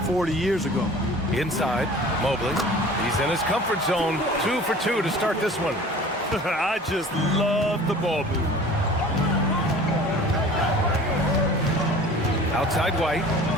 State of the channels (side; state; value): both; normal; correlation 0.44